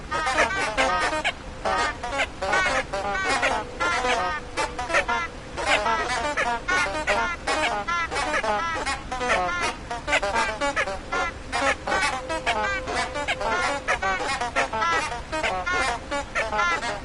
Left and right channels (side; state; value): both; identical; correlation 1.00